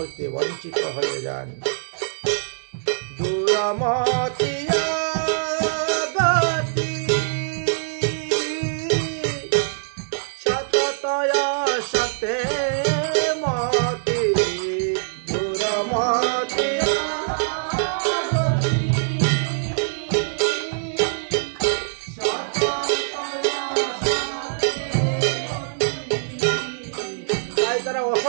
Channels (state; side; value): silent; left; digital silence